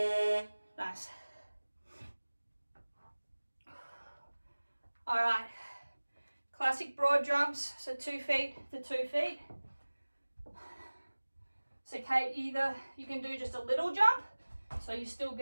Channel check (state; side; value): inverted; both; correlation -1.00